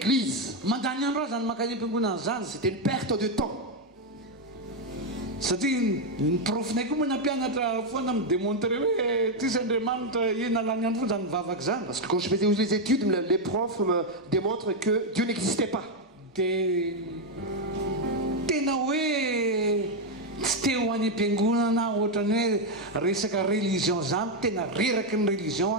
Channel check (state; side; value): normal; both; correlation 0.03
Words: C'était une perte de temps. Parce que quand je faisais les études, les profs me démontrent que Dieu n'existait pas. teo any am-piangonana ohatrany hoe resaka religion zany tena reraky ny religion